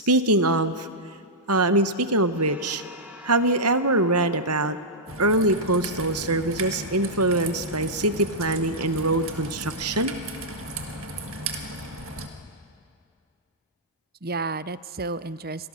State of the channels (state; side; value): normal; both; correlation -0.10